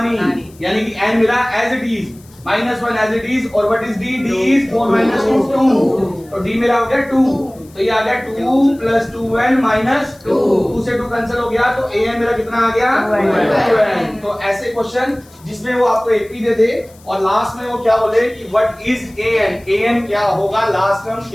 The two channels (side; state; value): left; noise; hiss, 27 dB below the sound